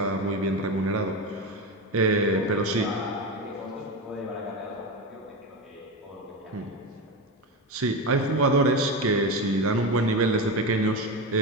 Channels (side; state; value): both; normal; correlation 0.18